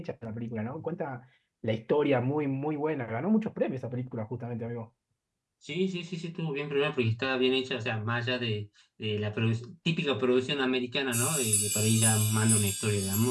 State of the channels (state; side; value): identical; both; correlation 1.00